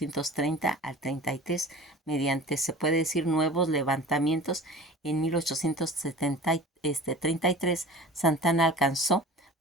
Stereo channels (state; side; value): normal; both; correlation 0.39